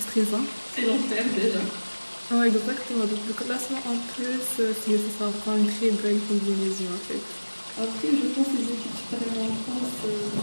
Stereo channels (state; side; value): inverted; both; correlation -1.00